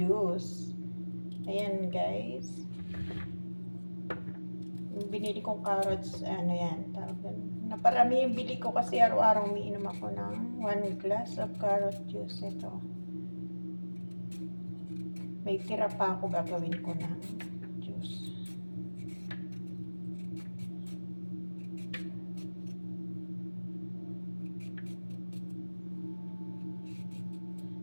Ayan guys. Binili kong carrots, ano yan, naparami yung bili ko kasi araw-araw umiinom ako ng 1 glass of carrot juice. Ito. May tira pa ako, gagawin ko ng juice.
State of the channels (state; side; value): inverted; both; correlation -1.00